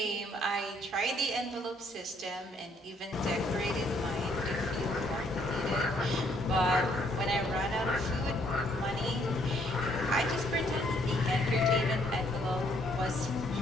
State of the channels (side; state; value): both; normal; correlation 0.68